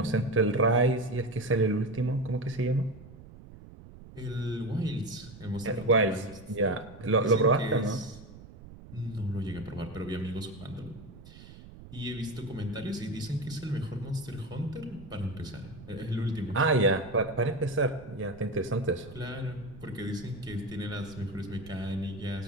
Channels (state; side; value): noise; right; rumble, 17 dB below the sound